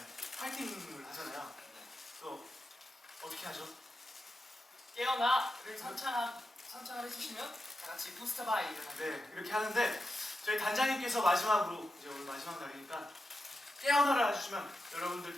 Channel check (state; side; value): normal; both; correlation 0.89